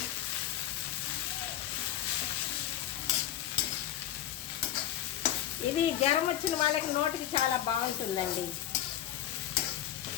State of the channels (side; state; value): right; quieter; 12.1 dB